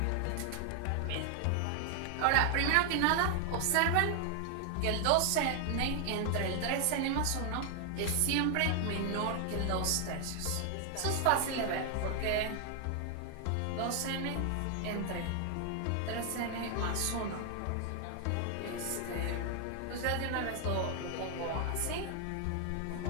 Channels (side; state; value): both; different; correlation 0.00